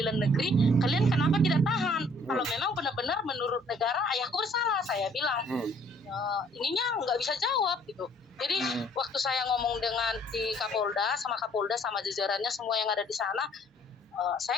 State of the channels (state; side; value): normal; both; correlation 0.60